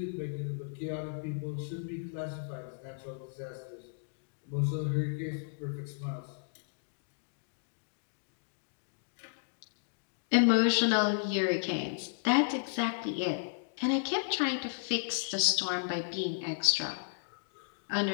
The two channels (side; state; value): right; silent; digital silence